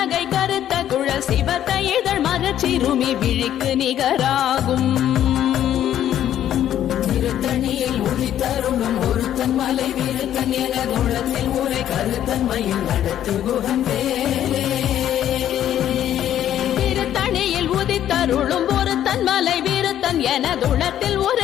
கருத்த குழல் சிவத்த இதழ் மரச்சிறுமி விழிக்கு நிகராகும் திருத்தணியில் உதித்தருளும் ஒருத்தன் மலை வீருத்தன் எனது உள்ளத்தில் ஊரை கருத்தன்மையில் நடத்து குகன் வேலே திருத்தணியில் உதித்தருளும் ஒருத்தன் மலை வீருத்தன் எனதுளத்தில்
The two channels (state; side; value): quieter; right; 11.1 dB